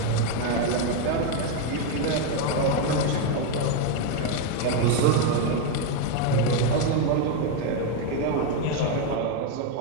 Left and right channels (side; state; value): both; different; correlation 0.02